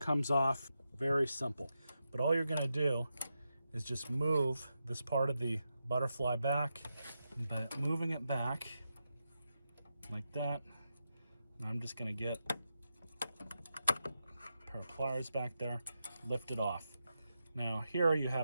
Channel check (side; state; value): both; inverted; correlation -0.88